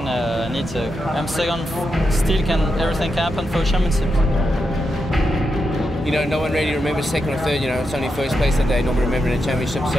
need to. I'm second, still everything can happen for championship. You know, no one really remembers second or third, you know, it's only first place that day, not remembering the championship,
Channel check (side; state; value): both; normal; correlation 0.86